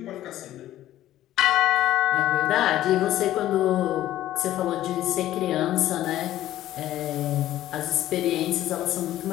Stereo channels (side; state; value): right; quieter; 13.7 dB